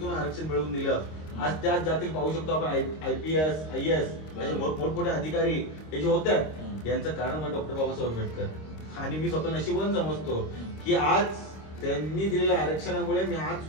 आरक्षण मिळवून दिलं. आज त्याच जातील पाहू शकतो आपण IPS, IAS मोठमोठे अधिकारी हे जे होतात, यांचं कारण म्हणजे डॉक्टर बाबासाहेब आंबेडकर. आणि मी स्वतः नशिबवान समजतो की आज त्यांनी दिलेल्या आरक्षणामुळे मी आज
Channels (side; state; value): right; late; 26 ms